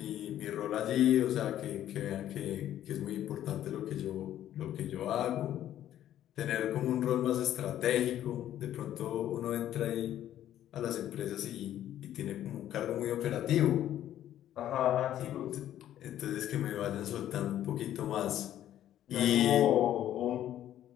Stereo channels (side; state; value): right; quieter; 11.9 dB